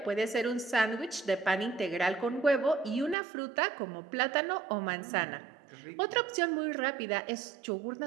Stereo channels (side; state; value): left; drops out; at 3.2 s